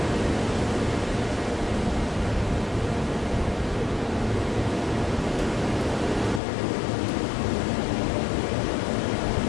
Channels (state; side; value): drops out; right; at 6.4 s